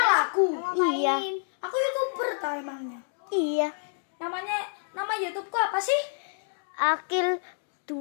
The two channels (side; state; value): right; silent; digital silence